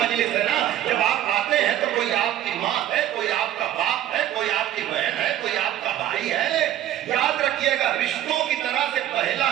ہے نا، جب آپ آتے ہیں تو کوئی آپ کی ماں ہے، کوئی آپ کا باپ ہے، کوئی آپ کی بہن ہے، کوئی آپ کا بھائی ہے۔ یاد رکھیے گا، رشتوں کی طرح سے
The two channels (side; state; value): left; quieter; 12.2 dB